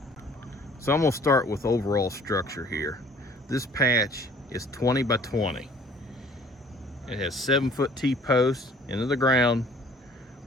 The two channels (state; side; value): normal; both; correlation 0.54